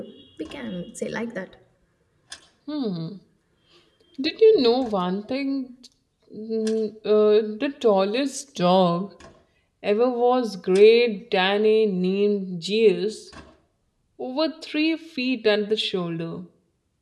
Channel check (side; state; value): both; identical; correlation 1.00